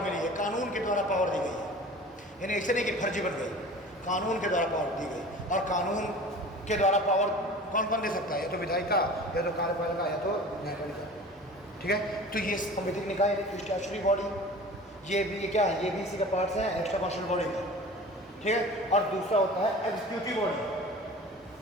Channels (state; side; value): normal; both; correlation 0.40